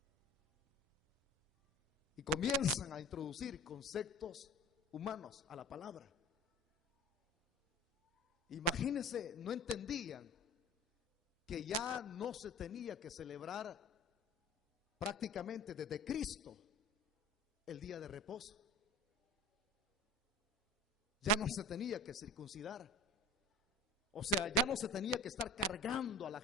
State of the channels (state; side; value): normal; both; correlation 0.36